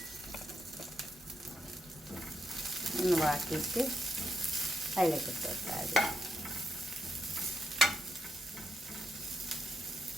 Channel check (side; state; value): both; normal; correlation 0.81